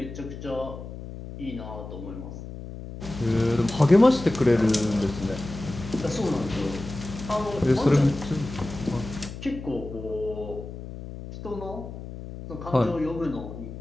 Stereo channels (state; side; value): noise; left; hum, 11 dB below the sound